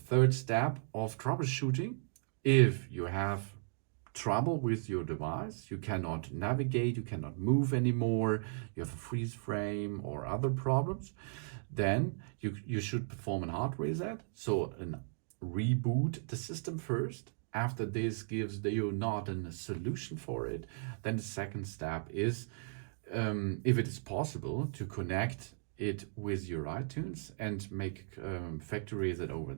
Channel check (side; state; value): left; silent; digital silence